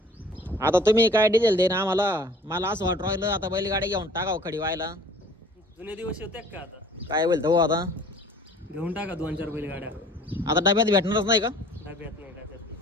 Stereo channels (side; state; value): both; normal; correlation 0.50